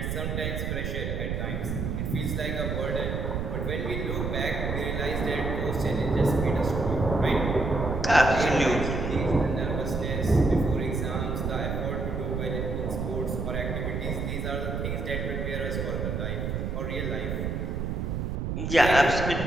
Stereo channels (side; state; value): right; noise; rumble, 2 dB below the sound